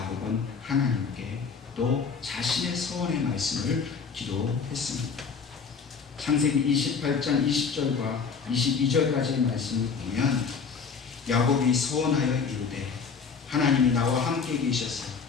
하나님께 또 자신의 소원의 말씀을 기도했습니다. 창세기 28장 20절과 22절까지의 말씀을 보면 야곱이 소원하여 이르되 하나님이 나와 함께 계셔서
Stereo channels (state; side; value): quieter; right; 5.5 dB